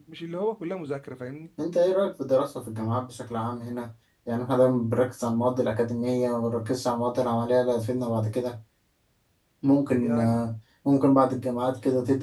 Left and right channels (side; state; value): both; identical; correlation 1.00